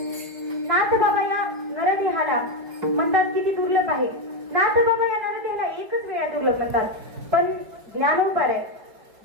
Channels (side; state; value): left; late; 4.9 ms